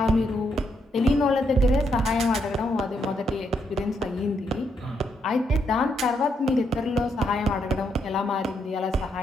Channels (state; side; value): normal; both; correlation 0.77